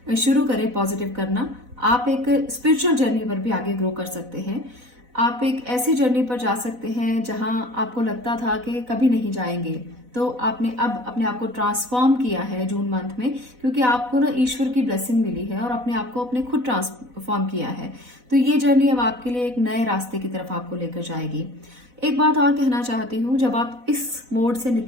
शुरू करें, पॉजिटिव करना। आप एक स्पिरिचुअल जर्नी पर भी आगे ग्रो कर सकते हैं। आप एक ऐसी जर्नी पर जा सकते हैं जहां आपको लगता था कि कभी नहीं जाएंगे, तो आपने अब अपने आप को ट्रांसफॉर्म किया है जून मंथ में, क्योंकि आपको ना ईश्वर की ब्लेसिंग मिली है और अपने आप को अपने खुद ट्रांसफॉर्म किया है। तो ये जर्नी अब आपके लिए एक नए रास्ते की तरफ आपको लेकर जाएगी। एक बात और कहना चाहती हूँ, जब आप इस मोड से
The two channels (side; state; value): left; late; 4.0 ms